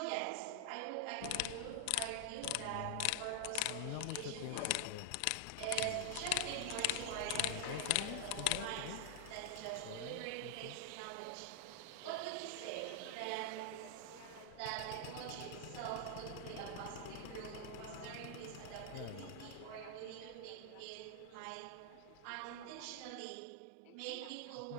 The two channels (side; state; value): both; different; correlation 0.00